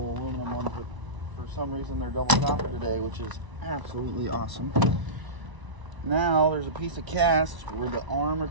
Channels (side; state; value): left; late; 1.0 ms